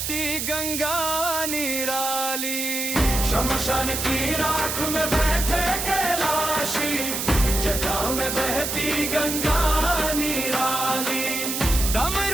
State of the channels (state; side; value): noise; right; hiss, 2 dB below the sound